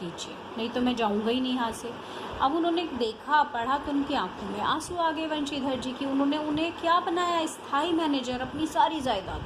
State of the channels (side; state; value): both; identical; correlation 1.00